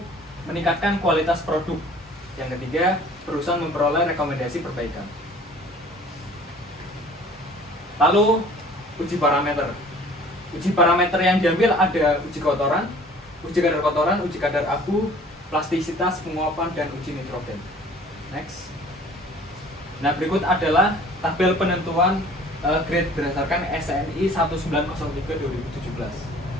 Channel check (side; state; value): both; normal; correlation 0.50